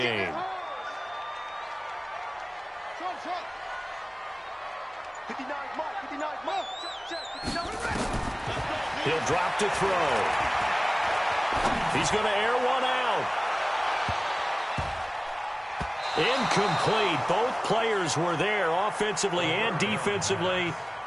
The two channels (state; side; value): identical; both; correlation 1.00